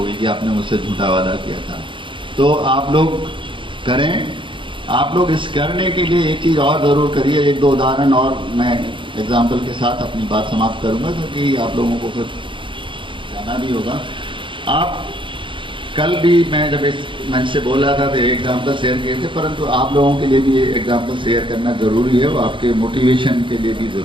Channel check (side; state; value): left; late; 0.24 ms